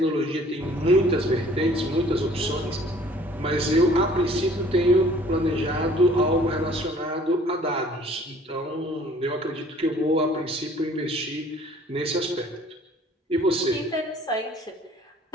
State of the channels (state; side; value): normal; both; correlation 0.54